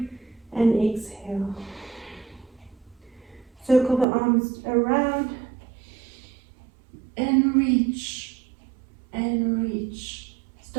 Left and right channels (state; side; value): drops out; left; at 4.0 s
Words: and exhale. Circle the arms around and reach and reach.